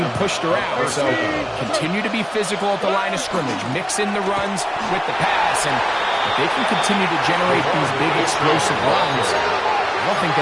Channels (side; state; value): both; identical; correlation 1.00